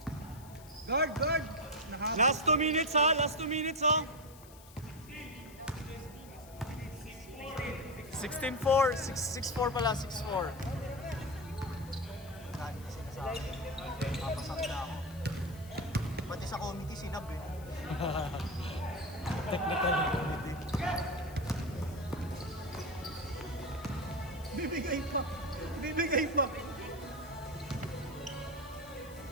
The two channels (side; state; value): left; noise; hiss, 21 dB below the sound